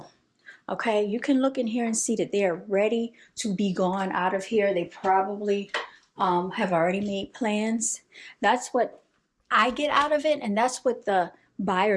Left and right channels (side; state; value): both; identical; correlation 1.00